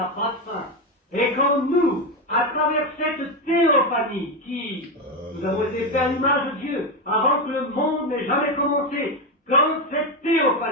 pas de fin. Et quand nous, à travers cette théophanie qui, nous avons été faits à l'image de Dieu, avant que le monde n'ait jamais commencé, quand cette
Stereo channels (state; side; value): normal; both; correlation 0.11